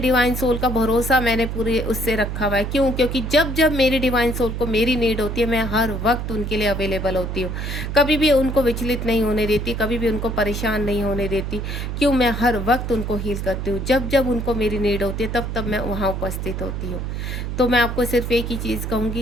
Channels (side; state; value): right; noise; hum, 4 dB below the sound